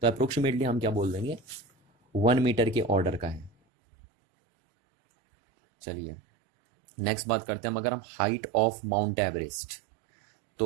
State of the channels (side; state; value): left; drops out; at 3.5 s